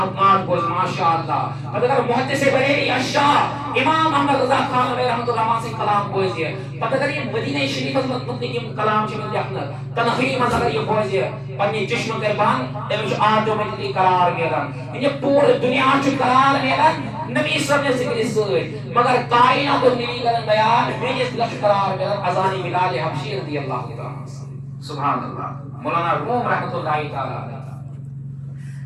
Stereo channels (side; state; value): both; identical; correlation 1.00